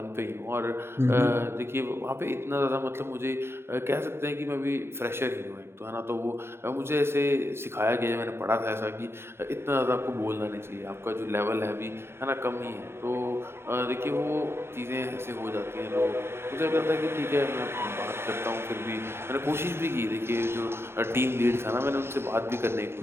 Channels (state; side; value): late; left; 0.12 ms